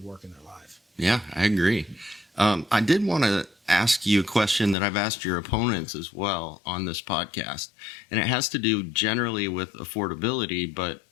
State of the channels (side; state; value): right; drops out; at 4.8 s